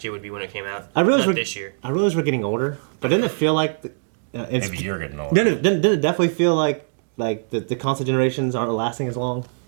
year would be when it came out. I realize Not this year. I realize we're getting older, but didn't it feel like it's Maybe you're getting older. didn't it definitely feel like the console generations aren't lasting as long?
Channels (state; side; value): silent; left; digital silence